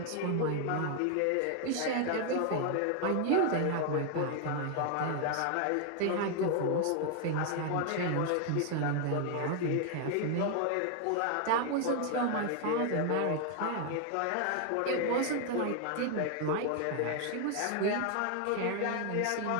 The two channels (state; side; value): different; both; correlation 0.00